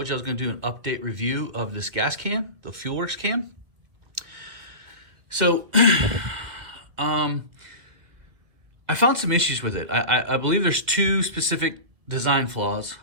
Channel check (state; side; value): late; left; 2.1 ms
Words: you I was going to do an update review of this gas can, the fuelworx can. So, I found some issues with it. I believe there's two specific design flaws